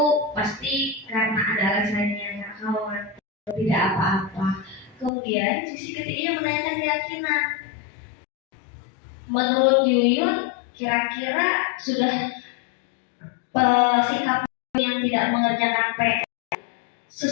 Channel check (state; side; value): drops out; right; at 5.1 s